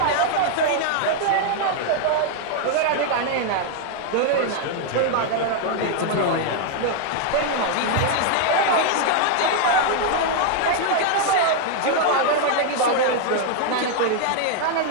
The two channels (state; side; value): different; both; correlation 0.00